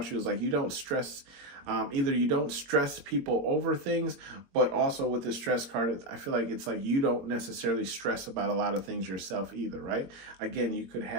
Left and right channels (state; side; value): late; left; 21 ms